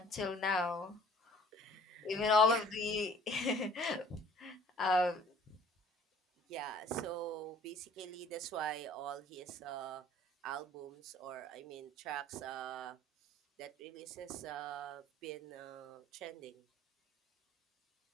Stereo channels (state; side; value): normal; both; correlation 0.52